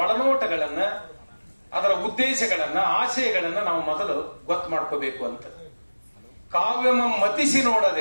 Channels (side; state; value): both; inverted; correlation -1.00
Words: ಒಳನೋಟಗಳನ್ನ, ಅದರ ಉದ್ದೇಶಗಳನ್ನ, ಆಶಯಗಳನ್ನ ನಾವು ಮೊದಲು ಗೊತ್ತು ಮಾಡ್ಕೋಬೇಕು ಅಂತ. ಕಾವ್ಯಮಂ